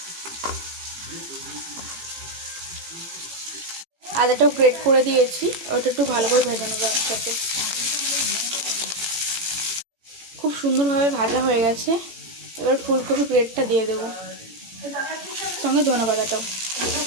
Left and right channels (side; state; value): left; late; 18 ms